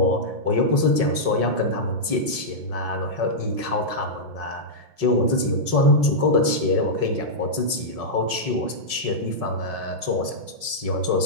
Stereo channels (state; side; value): late; left; 5.4 ms